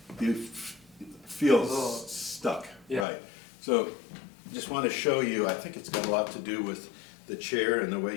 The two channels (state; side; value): drops out; right; at 3.1 s